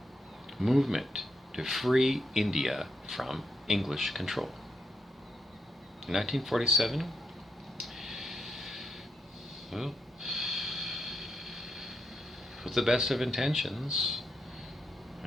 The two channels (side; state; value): both; normal; correlation 0.81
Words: movement to free India from English control. In 1947, well, with the best of intentions,